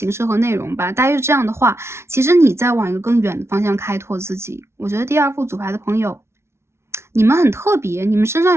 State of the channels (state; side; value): late; left; 0.13 ms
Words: 式和内容吧，大约是这样的话，其实你在往一个更远的方向开拓自己。我觉得第二副组牌的朋友，你们很特别，你们身